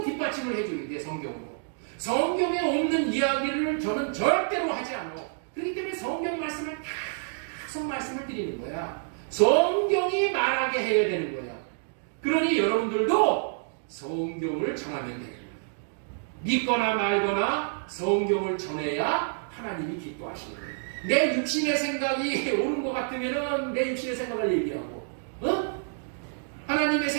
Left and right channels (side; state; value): left; silent; digital silence